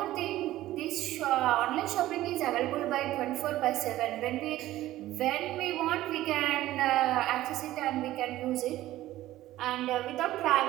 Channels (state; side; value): quieter; left; 15.2 dB